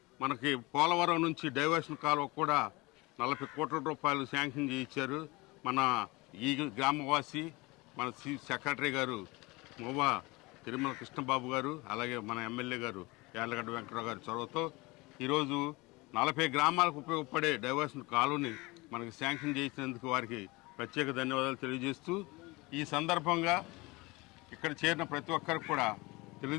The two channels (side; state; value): right; quieter; 23.8 dB